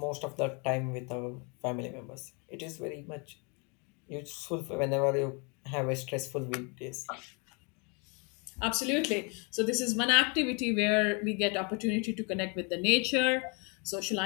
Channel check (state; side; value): quieter; right; 33.5 dB